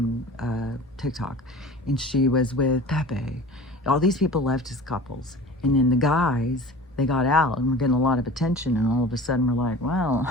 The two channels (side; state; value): both; normal; correlation 0.40